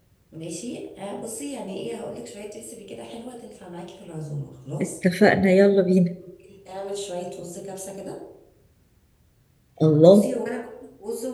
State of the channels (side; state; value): both; identical; correlation 1.00